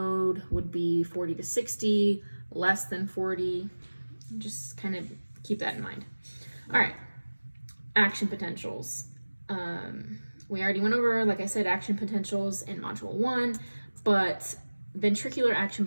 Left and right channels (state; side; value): inverted; both; correlation -1.00